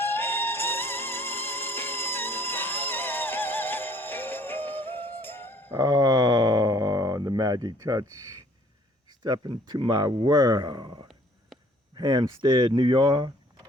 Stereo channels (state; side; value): normal; both; correlation 0.58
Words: Oh, the magic touch. Step into my world. Hampstead, New York.